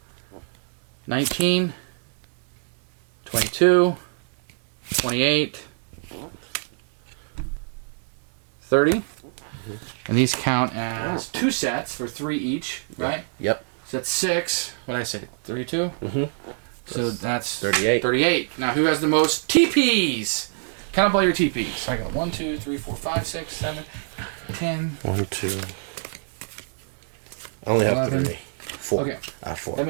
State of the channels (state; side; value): silent; left; digital silence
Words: 19, 22, 28, 30. And these count as 2 sets for 3 each, right? Yep. So that's 6. What did I say? 32? Mm-hmm. So that's 38. 38. Now who has the most TPs? Count up all your TPs. I got 1, 2, 3, 4, 5, 6, 7, 9, 10. 1, 2. I only 11. have 4. Okay. 4. That